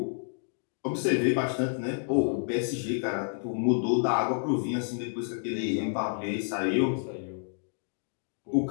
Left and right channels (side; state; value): right; silent; digital silence